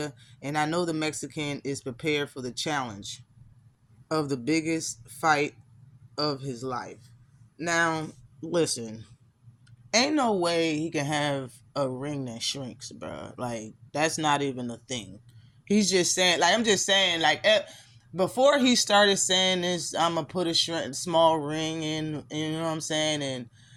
and I know the Mexican is prepared for the challenge of the biggest fight of his life. Now, listen, ain't no way he can have a ring that shrinks, bro. Like, that's not even a thing. He's just saying, like, I'm just saying, like, before he started saying this, I'm going to put a small ring in, you know what I'm saying, and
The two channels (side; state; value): both; identical; correlation 1.00